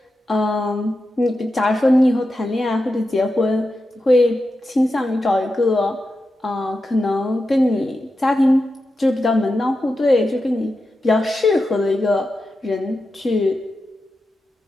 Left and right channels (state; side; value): normal; both; correlation 0.90